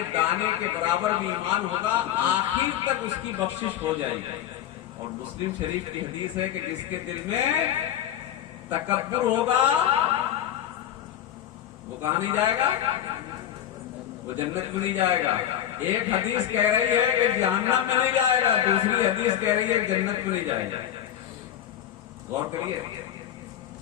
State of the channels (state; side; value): quieter; right; 11.1 dB